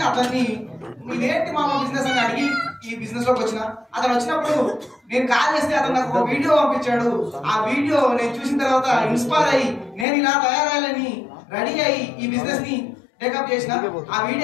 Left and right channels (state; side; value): drops out; right; at 10.1 s